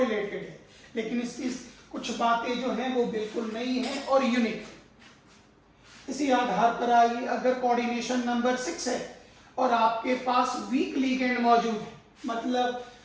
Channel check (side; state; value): both; identical; correlation 1.00